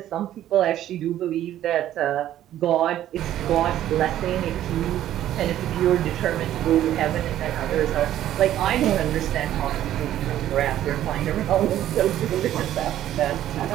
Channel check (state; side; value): quieter; left; 12.4 dB